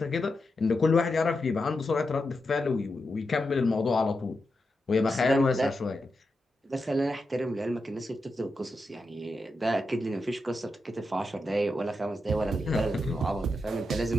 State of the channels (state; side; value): normal; both; correlation 0.87